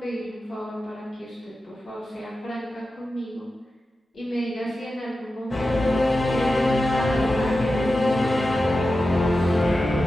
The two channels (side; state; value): both; normal; correlation 0.92